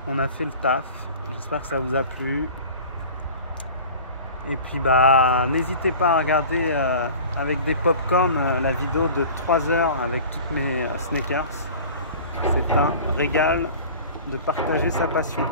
On a fait le taf. J'espère que ça vous a plu. Et puis bah n'hésitez pas à regarder avec des popcorn la vidéo de 3 heures avec toutes mes sneakers. C'est un régal de partager sa passion.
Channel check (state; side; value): inverted; both; correlation -0.40